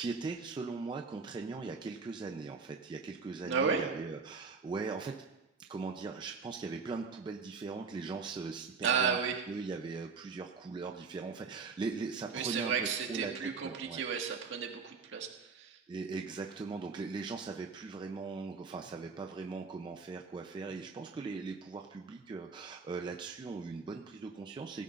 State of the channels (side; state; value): left; quieter; 5.0 dB